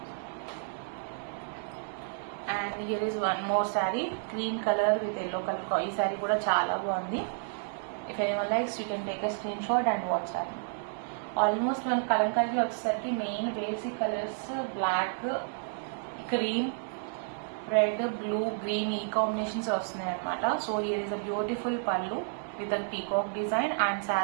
And here is one more sari green colour with yellow colour. ఈ శారీ కూడా చాలా బాగుంది. If anyone likes you can take a screen shot and WhatsApp. Almost మన కలంకారీ వచ్చేసరికి main basic colours black, cream, red, blue, green ఈ combinations వస్తున్నాయి అనమాట. So here is a beautiful pallu with a peacock design. And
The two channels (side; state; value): left; silent; 57 dB below the other